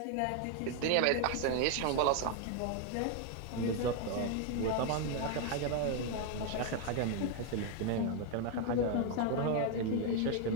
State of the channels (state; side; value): different; both; correlation 0.00